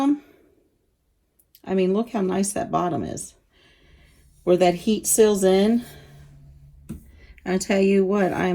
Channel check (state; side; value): identical; both; correlation 1.00